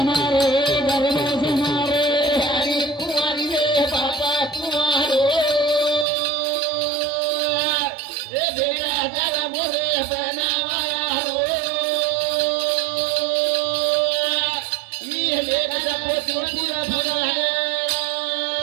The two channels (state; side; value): drops out; left; at 6.1 s